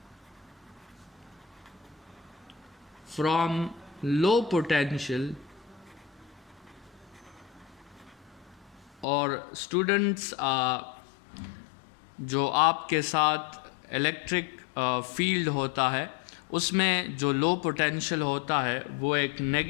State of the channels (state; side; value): drops out; right; at 9.1 s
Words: from low potential, और स्टूडेंट्स जो आपके साथ इलेक्ट्रिक फील्ड होता है उसमें जो लो पोटेंशियल होता है वो एक